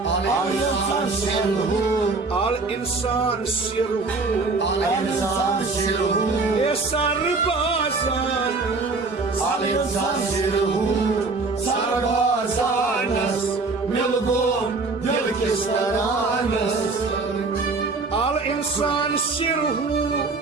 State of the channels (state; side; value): quieter; left; 3.8 dB